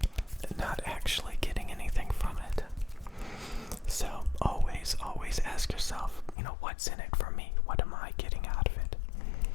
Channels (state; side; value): drops out; right; at 6.4 s